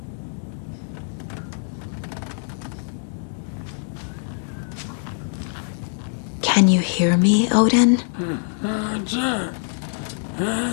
Can you hear me, Odin?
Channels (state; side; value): silent; right; 63 dB below the other